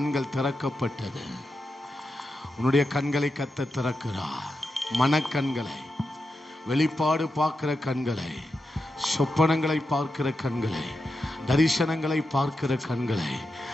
திறக்கப்பட்டது. உன்னுடைய கண்களை கர்த்தர் திறக்கிறார். மனக்கண்களை, வெளிப்பாடு பார்க்கிற கண்களை, சொப்பனங்களை பார்க்கிற கண்களை, தரிசனங்களை பார்க்கிற கண்களை,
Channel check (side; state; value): both; normal; correlation 0.88